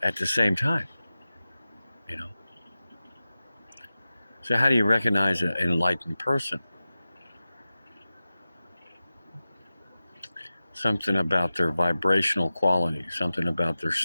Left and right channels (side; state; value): both; inverted; correlation -0.95